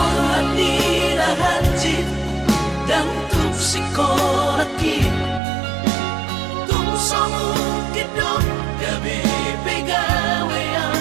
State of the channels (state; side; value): drops out; left; at 5.4 s